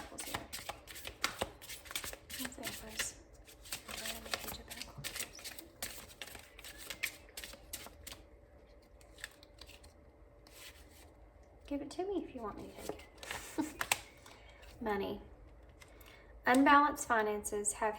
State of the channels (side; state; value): both; identical; correlation 1.00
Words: here. What's the Empress? Emperor and the Page of Pentacles. Give it to me if you want me to take it. Money. Unbalanced finances have